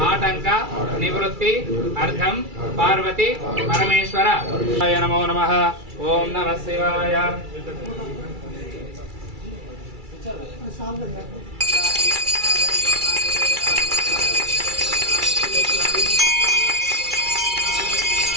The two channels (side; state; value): left; late; 2.3 ms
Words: ఆటంక నివృత్తి అర్థం పార్వతి పరమేశ్వర నమో నమః. ఓం నమః శివాయ.